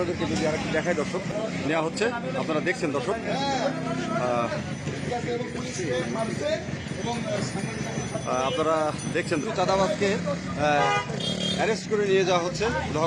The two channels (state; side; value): identical; both; correlation 1.00